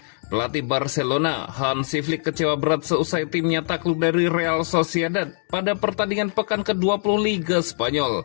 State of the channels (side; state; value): right; silent; digital silence